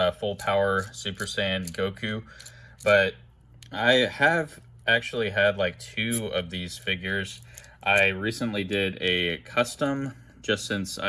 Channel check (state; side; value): identical; both; correlation 1.00